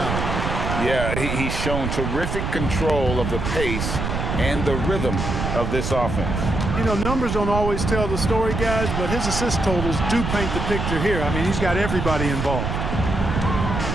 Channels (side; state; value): right; noise; rumble, 2 dB below the sound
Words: Yeah, he's shown terrific control of the pace and the rhythm of this offense. You know, numbers don't always tell the story, guys, but his assist totals do paint the picture here. I mean, he's got everybody involved.